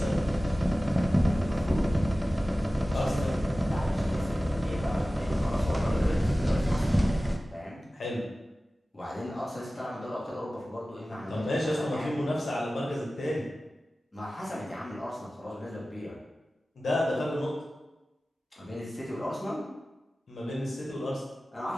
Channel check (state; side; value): normal; both; correlation 0.96